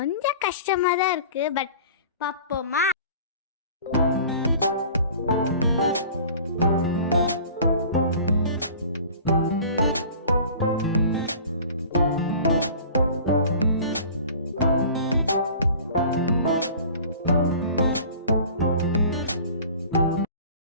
கஷ்டமாக தான் இருக்குது, பட் பார்ப்போமா?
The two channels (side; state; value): both; inverted; correlation -0.44